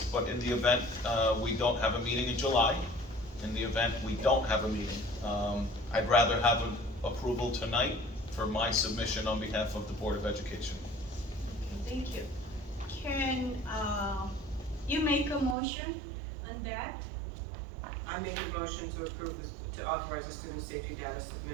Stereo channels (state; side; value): drops out; left; at 15.6 s